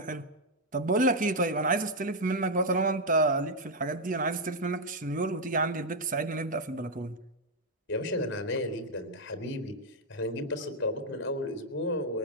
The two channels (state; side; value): normal; both; correlation 0.00